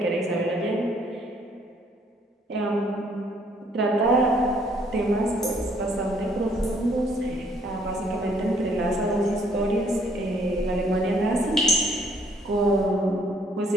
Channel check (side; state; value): both; normal; correlation 0.65